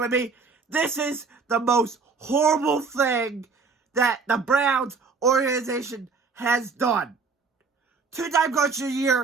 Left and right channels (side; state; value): left; quieter; 4.8 dB